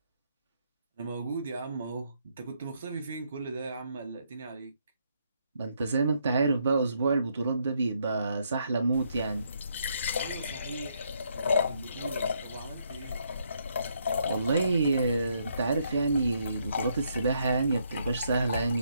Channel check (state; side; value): inverted; both; correlation -0.74